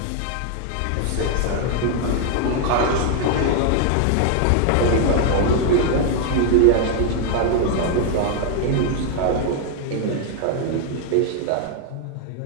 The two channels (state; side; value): different; both; correlation 0.00